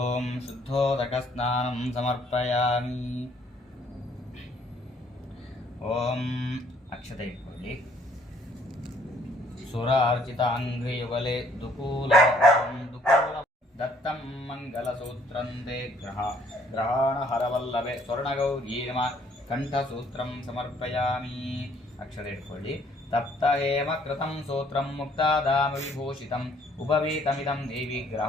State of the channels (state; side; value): normal; both; correlation 0.62